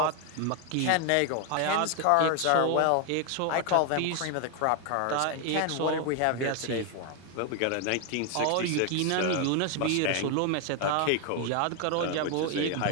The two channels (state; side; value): different; both; correlation 0.01